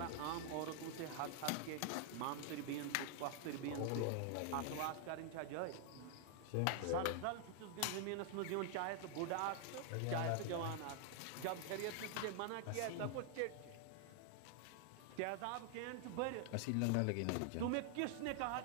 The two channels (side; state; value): both; different; correlation 0.00